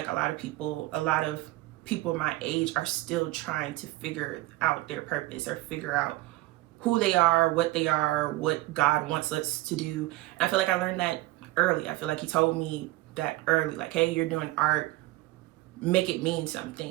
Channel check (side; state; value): left; quieter; 18.6 dB